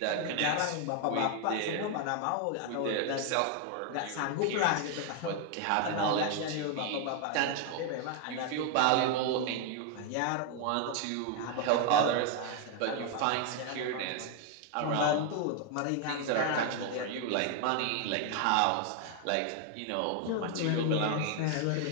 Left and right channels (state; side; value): different; both; correlation 0.00